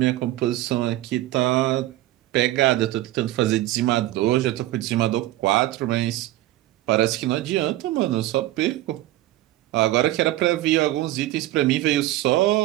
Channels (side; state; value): left; quieter; 15.7 dB